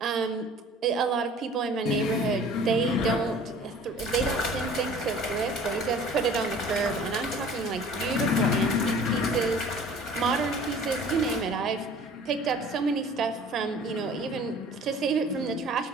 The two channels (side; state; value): both; normal; correlation 0.48